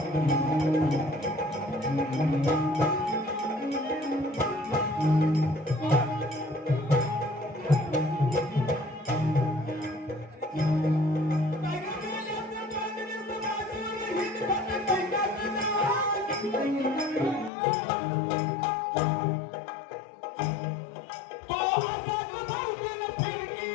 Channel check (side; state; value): right; drops out; at 17.5 s